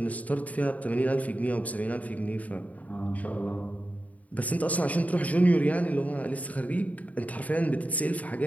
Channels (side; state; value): right; late; 0.071 ms